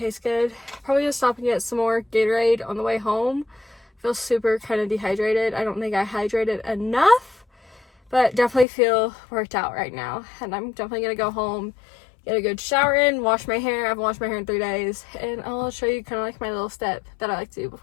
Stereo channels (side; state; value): right; drops out; at 8.7 s